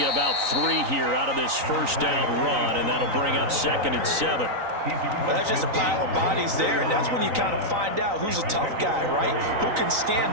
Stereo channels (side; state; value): left; late; 3.9 ms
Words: about 3 here out of this 1st down run, and that'll bring up 2nd and 7. Well, that's just a pile of bodies there, and that's when you kind of find out who's a tough guy, right? Who can